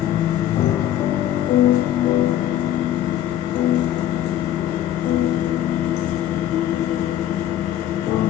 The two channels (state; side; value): quieter; right; 11.8 dB